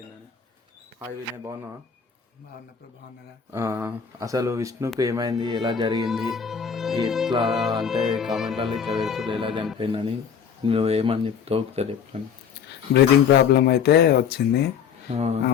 హాయ్ వినయ్, బాగున్నావా? అసలు విష్ణుకు ఏమైంది, ఎలా జరిగింది, ఇట్లా అంటే కామెంట్లలో ఇట్లా పెడుతుంది ఎలా చనిపోయిందని నువ్వు ఏమని చెప్తావు ఒకసారి చెప్పాను. బ్రీతింగ్ ప్రాబ్లం అయితే వచ్చింది.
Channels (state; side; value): quieter; right; 7.1 dB